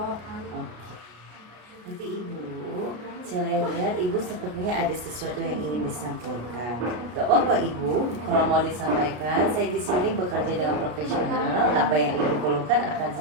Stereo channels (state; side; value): late; left; 33 ms